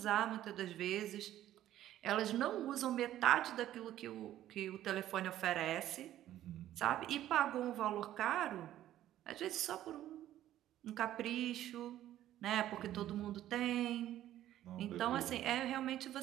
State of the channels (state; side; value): quieter; left; 12.9 dB